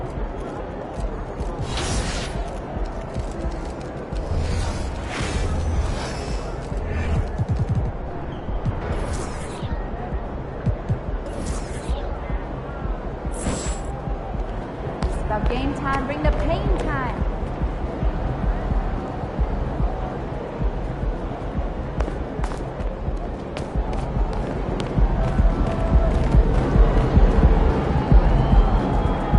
Game time, bring the pain time.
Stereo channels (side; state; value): both; identical; correlation 1.00